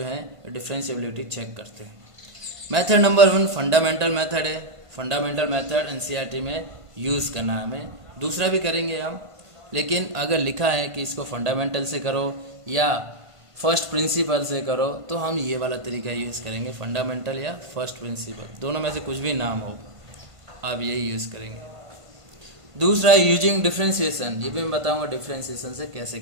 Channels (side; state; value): left; late; 1.5 ms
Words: है डिफरेंशिएबिलिटी चेक करते हैं। मेथड नंबर 1 फंडामेंटल मेथड है। फंडामेंटल मेथड एनसीईआरटी में यूज़ करना है हमें, दूसरा भी करेंगे हम, लेकिन अगर लिखा है कि इसको फंडामेंटल से करो या फर्स्ट प्रिंसिपल से करो तो हम ये वाला तरीका यूज़ करेंगे, फंडामेंटल या फर्स्ट प्रिंसिपल, दोनों में से कुछ भी नाम हो आप यही यूज़ करेंगे। दूसरा यूजिंग डिफरेंशिएशन, ये भी मैं बताऊंगा डिफरेंशिएशन से कैसे